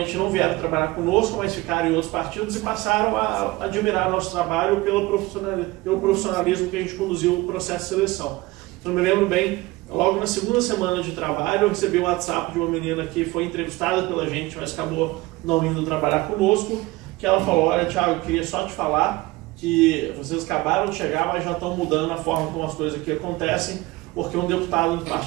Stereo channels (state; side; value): quieter; left; 20.6 dB